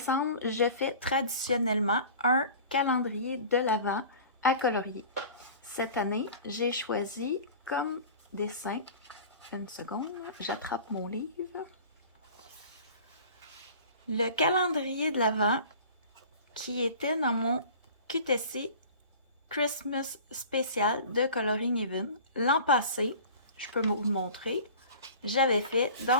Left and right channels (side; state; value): both; inverted; correlation -0.41